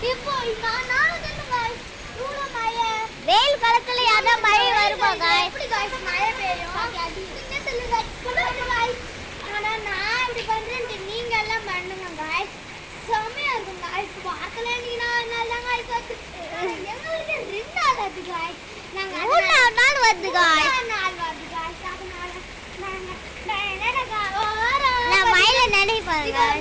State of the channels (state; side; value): identical; both; correlation 1.00